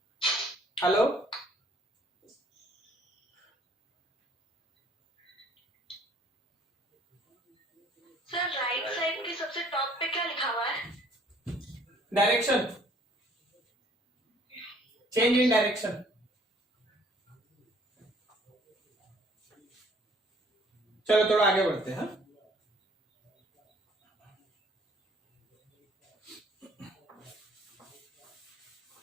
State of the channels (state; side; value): normal; both; correlation 0.59